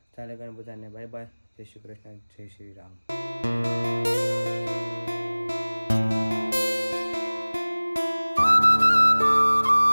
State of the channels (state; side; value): inverted; both; correlation -1.00